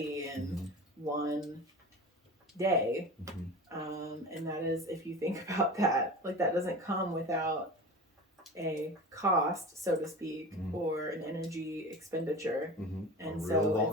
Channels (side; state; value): both; normal; correlation 0.33